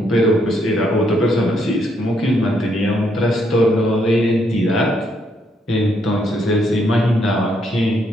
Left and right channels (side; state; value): both; normal; correlation 0.74